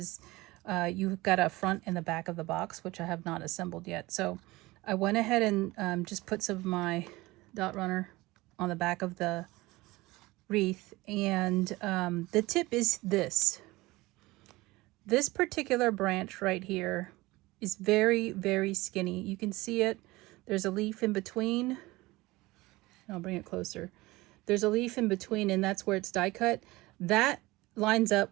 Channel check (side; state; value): left; quieter; 20.5 dB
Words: you've got a front and the back of the box, which I have not assembled yet. So I went ahead and just put some of my dot runner on the back of the wreath, and the tip is this. This particular branch right here is very, very skinny. You can see it. There's a leaf in between. I'll bring it closer. There's a leaf in between, and that's where it's die cut. That lines